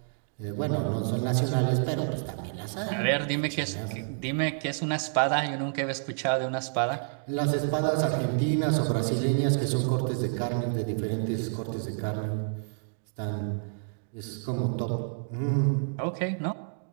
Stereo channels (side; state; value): left; silent; digital silence